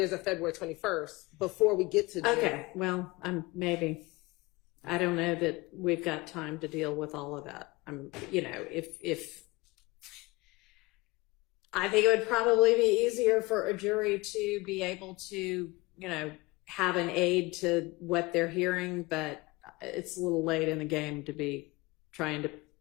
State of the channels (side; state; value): right; quieter; 23.1 dB